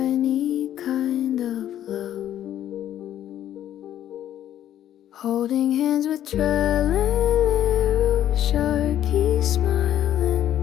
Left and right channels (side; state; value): right; quieter; 11.4 dB